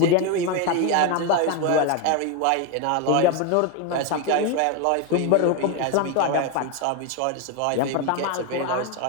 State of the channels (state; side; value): different; both; correlation 0.02